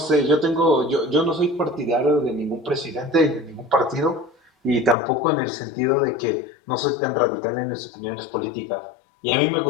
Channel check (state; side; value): drops out; right; at 5.0 s